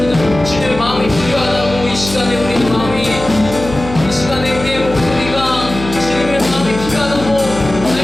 주님의 마음이 필요하다고 이 시간에 우리의 마음이 이 시간에 우리의 목소리가 주님의 마음이 필요하다고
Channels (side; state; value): left; noise; hum, 10 dB below the sound